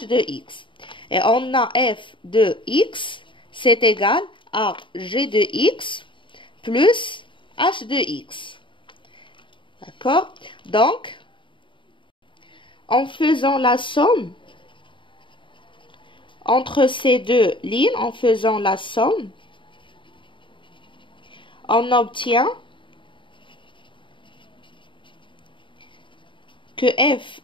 de X. Et on a F de X, c'est égal à G de X plus H de X. D'accord? Donc, en faisant la somme entre ces deux lignes, en faisant la somme, on obtient que F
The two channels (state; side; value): late; right; 0.24 ms